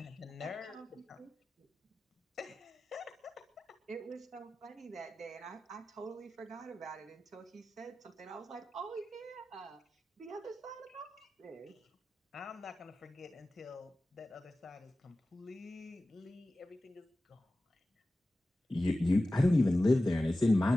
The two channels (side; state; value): both; normal; correlation 0.95